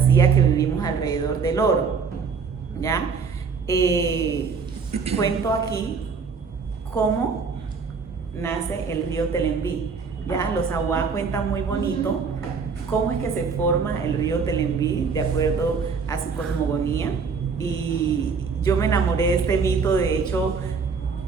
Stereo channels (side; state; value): left; quieter; 5.4 dB